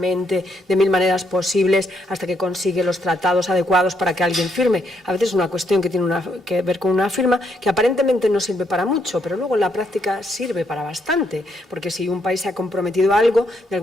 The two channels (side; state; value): both; normal; correlation 0.75